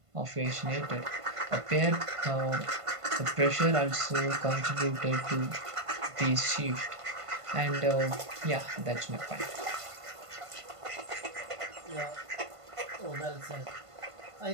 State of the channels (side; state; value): left; late; 1.5 ms